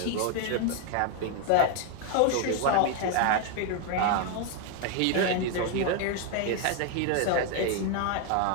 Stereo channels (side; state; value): both; different; correlation 0.01